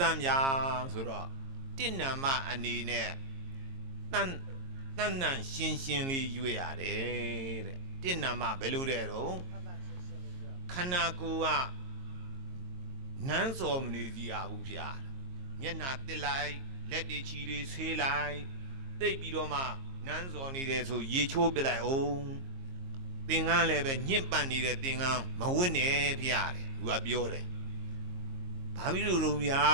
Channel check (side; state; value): left; late; 22 ms